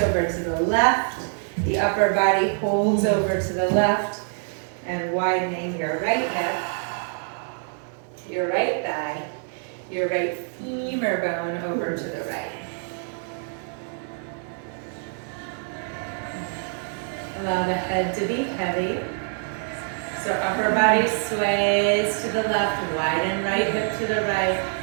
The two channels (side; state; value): left; silent; 62 dB below the other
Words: over to the left. The upper body holds over to the left. And widening your right hip, your right thigh, your right femur bone over to the right. Allow the head to be heavy. So upper body sways to the left, widen right hip to the right.